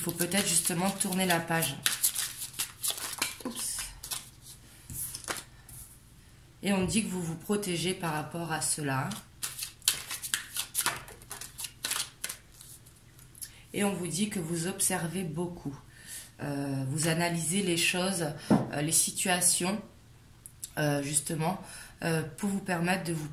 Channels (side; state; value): both; identical; correlation 1.00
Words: faut peut-être justement tourner la page. Oups. Et on dit que vous vous protégez par rapport à cela. Et on vous dit que vous observez beaucoup. Vous analysez les choses, les situations, justement, pour vous permettre de vous